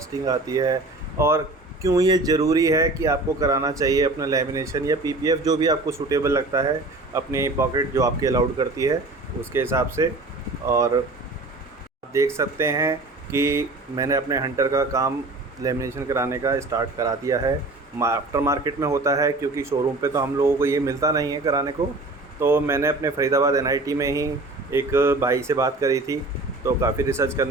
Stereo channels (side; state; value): left; quieter; 3.1 dB